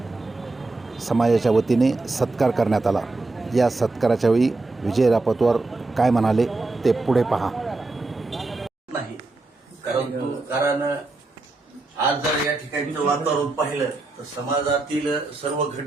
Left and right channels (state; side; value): quieter; left; 3.2 dB